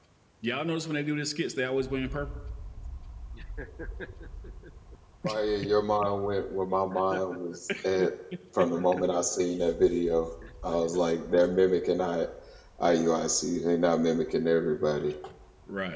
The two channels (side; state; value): both; identical; correlation 1.00